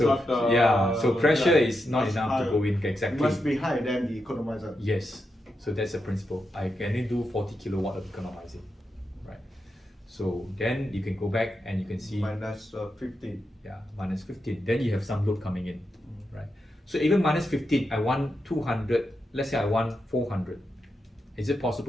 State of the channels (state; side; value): normal; both; correlation 0.86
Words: so pressure yeah, is not much enough higher. to go in It exactly. must be higher than the economizer. Yes. So that's the principle. I can only do 40 kilowatt of economizing, right? So then you can go back and you can see Minus 15. yeah, -15. Then you have some load coming in, right? So even -15, I want 200. Let's say I want 400. Is it